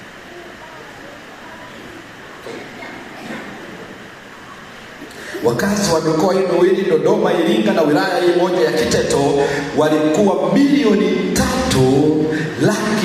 wakazi wa mikoa hii miwili, Dodoma, Iringa na wilaya hii moja ya Kiteto, walikuwa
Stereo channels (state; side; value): identical; both; correlation 1.00